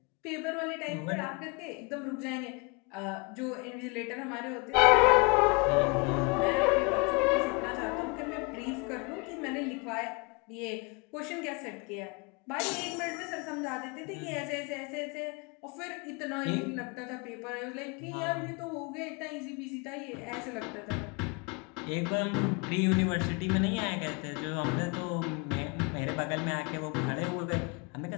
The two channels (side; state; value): right; quieter; 30.4 dB